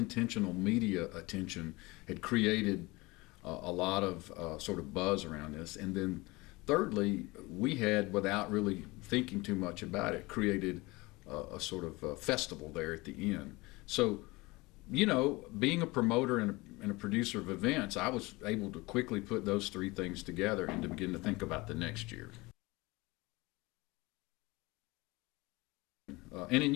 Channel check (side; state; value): right; quieter; 23.0 dB